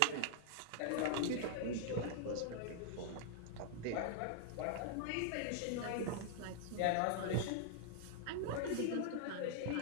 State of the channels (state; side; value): different; both; correlation -0.01